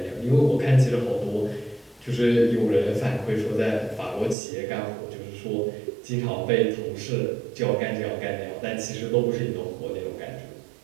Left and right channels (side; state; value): left; drops out; at 4.4 s